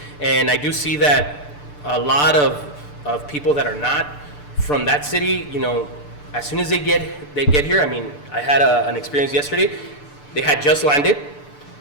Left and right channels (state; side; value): late; right; 6.8 ms